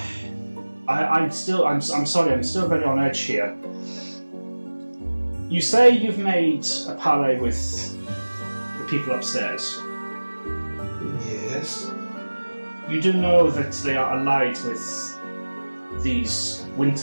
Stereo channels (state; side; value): inverted; both; correlation -1.00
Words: sorry, I'm still very on edge here. You say you've made a parley with the people upstairs. Yes. You do know that they are allied with these